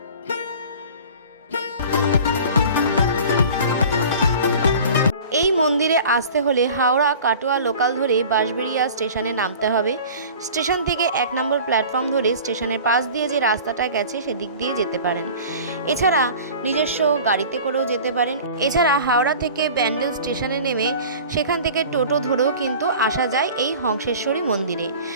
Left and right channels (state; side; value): inverted; both; correlation -0.41